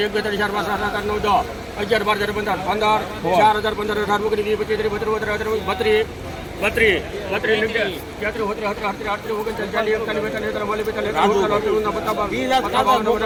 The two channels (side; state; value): both; identical; correlation 1.00